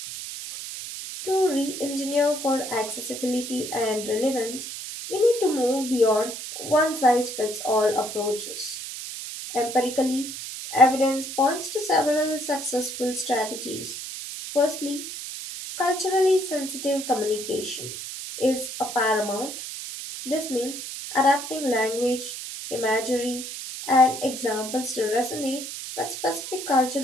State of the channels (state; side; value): noise; right; hiss, 8 dB below the sound